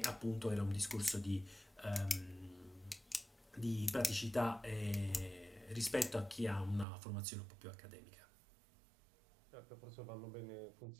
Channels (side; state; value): left; drops out; at 6.9 s